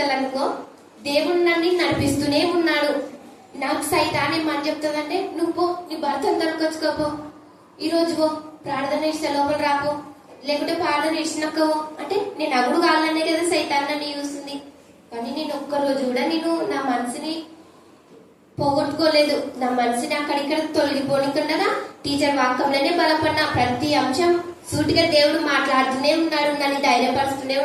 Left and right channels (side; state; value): both; identical; correlation 1.00